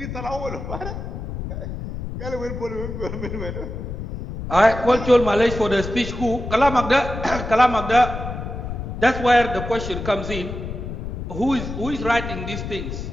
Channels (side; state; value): left; noise; rumble, 7 dB below the sound